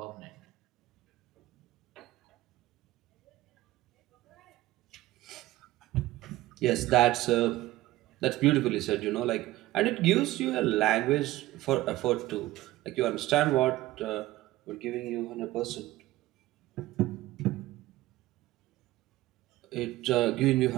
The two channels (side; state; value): left; quieter; 16.9 dB